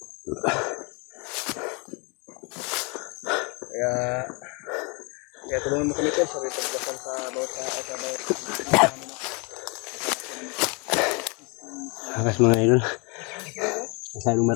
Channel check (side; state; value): right; quieter; 31.6 dB